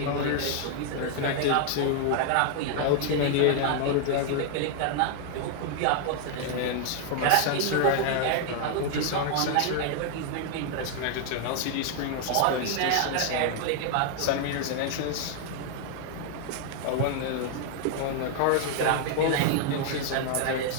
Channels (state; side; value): different; both; correlation 0.00